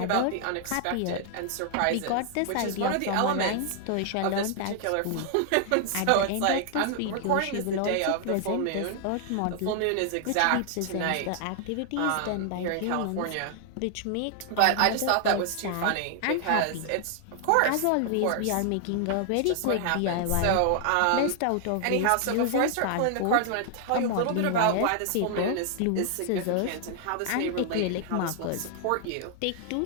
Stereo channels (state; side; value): different; both; correlation 0.00